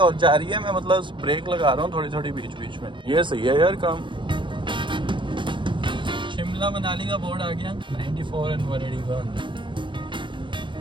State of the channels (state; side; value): late; left; 0.24 ms